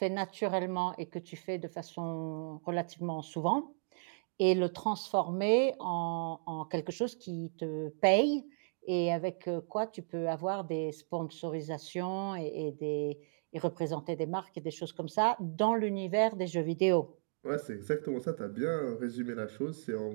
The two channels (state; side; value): silent; left; digital silence